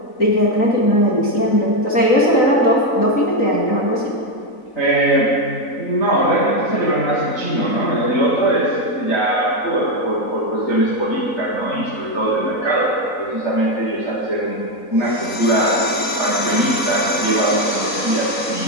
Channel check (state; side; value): late; right; 3.9 ms